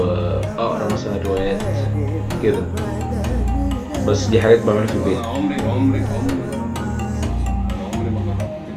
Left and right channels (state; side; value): identical; both; correlation 1.00